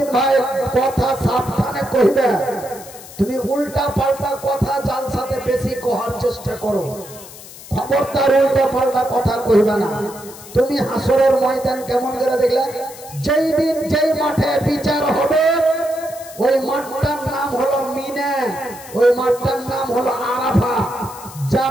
ভাই কথা সাবধানে কইবে, তুমি উল্টা পাল্টা কথা যার সাথে বেশি কহার চেষ্টা করো। খবরদার উল্টা পাল্টা কথা কইবে না। তুমি হাসরের ময়দান কেমন করে দেখলে? যেই দিন যেই মাঠে বিচার হবে ওই মাঠটার নাম হলো মিনা, ওই মাঠটার নাম হলো আরাফা।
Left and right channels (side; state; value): left; noise; hiss, 17 dB below the sound